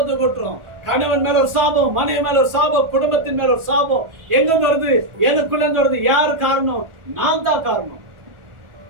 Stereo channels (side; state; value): left; late; 1.4 ms